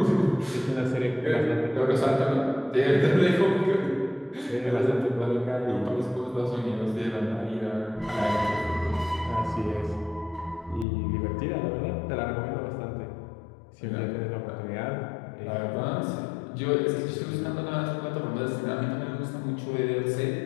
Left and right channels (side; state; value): right; drops out; at 10.9 s